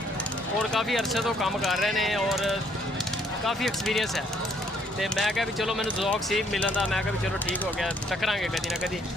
ਔਰ ਕਾफ़ी ਅਰਸੇ ਤੋਂ ਕੰਮ ਕਰ ਰਹੇ ਨੇ ਔਰ ਕਾफ़ी ਐਕਸਪੀਰੀਅੰਸ ਹੈ। ਤੇ ਮੈਂ ਕਿਹਾ ਵੀ ਚਲੋ ਮੈਨੂੰ ਜ਼ੌਕ ਸੀ ਮਿਲਣ ਦਾ, ਮੈਂ ਕਿਹਾ ਵੀ ਚਲੋ ਠੀਕ ਹੋ ਗਿਆ, ਟੱਕਰਾਂਗੇ ਕਦੀ ਨਾ ਕਦੀ।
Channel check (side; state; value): both; normal; correlation 0.66